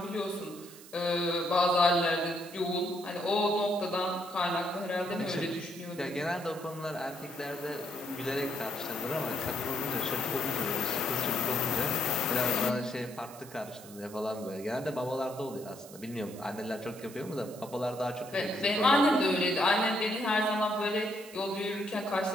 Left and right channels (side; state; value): right; noise; hiss, 18 dB below the sound